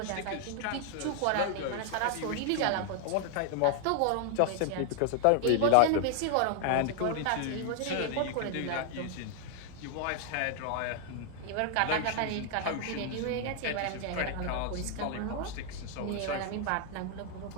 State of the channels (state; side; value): different; both; correlation 0.00